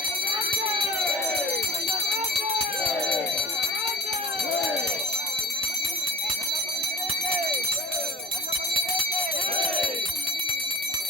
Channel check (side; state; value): both; normal; correlation 0.38